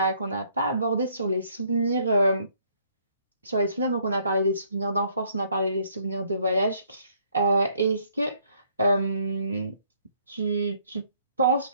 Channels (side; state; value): both; inverted; correlation -0.66